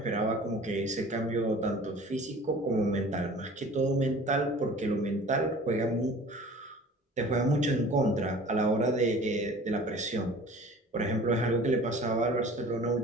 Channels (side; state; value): both; normal; correlation 0.45